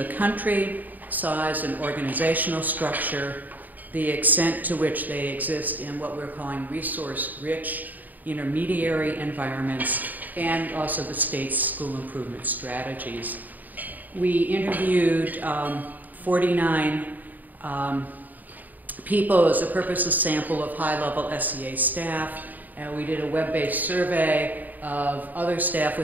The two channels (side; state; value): left; late; 0.084 ms